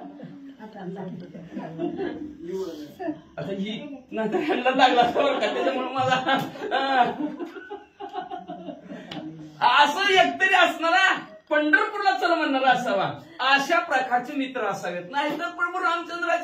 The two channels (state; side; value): identical; both; correlation 1.00